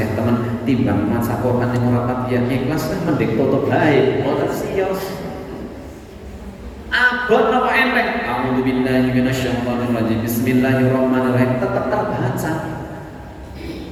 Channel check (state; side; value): identical; both; correlation 1.00